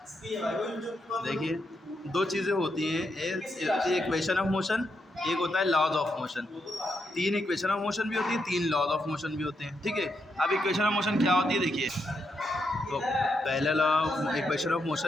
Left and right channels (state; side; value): normal; both; correlation 0.82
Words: देखिए दो चीज़ें होती हैं, एक होती है इक्वेशन ऑफ मोशन, एक होता है laws of motion. 3 equation of motion भी होती है, 3 लॉज ऑफ मोशन भी होते हैं, ठीक है। अब इक्वेशन ऑफ मोशन क्या होती है देखिए, तो पहला लॉ इक्वेशन ऑफ